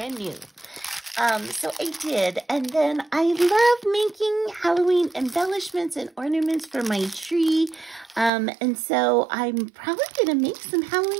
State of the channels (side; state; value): left; drops out; at 8.3 s